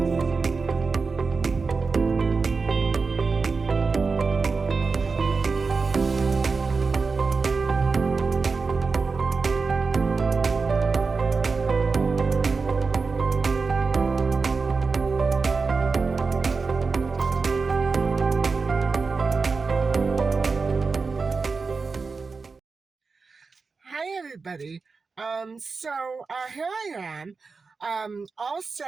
already. Here I am, all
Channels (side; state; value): left; quieter; 4.5 dB